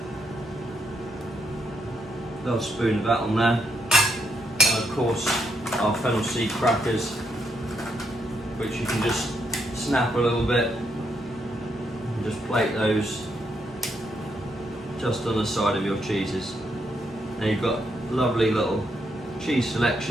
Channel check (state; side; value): normal; both; correlation 0.78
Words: Little spoon of that on there. And of course, our fennel seed crackers, which you can just snap a little bit and just plate those just on the side of your cheeses. And you've got lovely little cheese